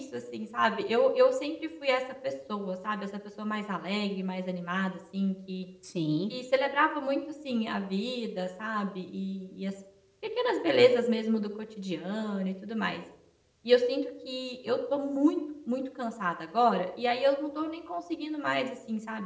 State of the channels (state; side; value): identical; both; correlation 1.00